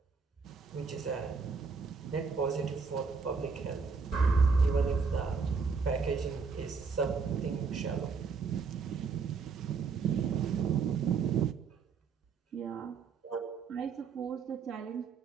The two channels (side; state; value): left; quieter; 5.2 dB